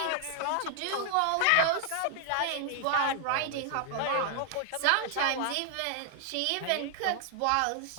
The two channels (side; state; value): both; different; correlation 0.00